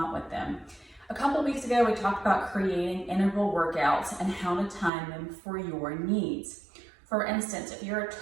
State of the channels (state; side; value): drops out; left; at 4.9 s